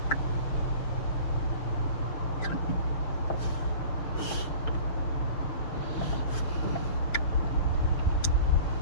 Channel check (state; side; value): late; right; 6.4 ms